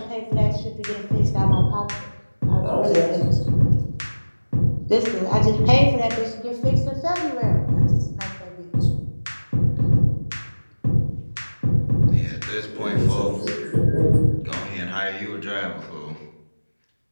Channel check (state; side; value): inverted; both; correlation -1.00